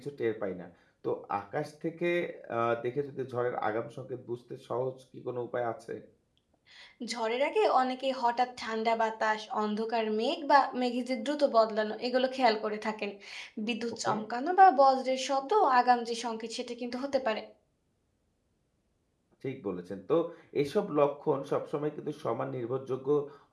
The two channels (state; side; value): identical; both; correlation 1.00